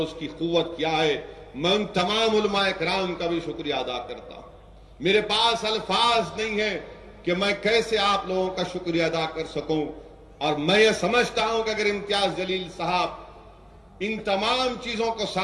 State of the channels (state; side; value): identical; both; correlation 1.00